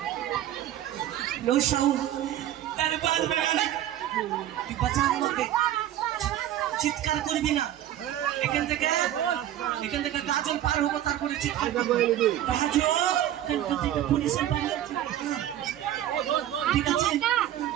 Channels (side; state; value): left; quieter; 12.2 dB